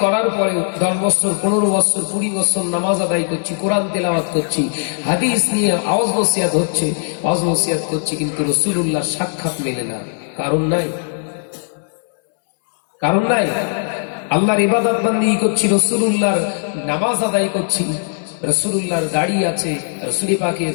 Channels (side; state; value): right; silent; digital silence